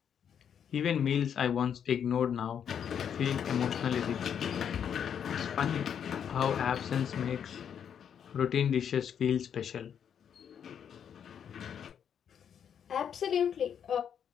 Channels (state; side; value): quieter; right; 8.2 dB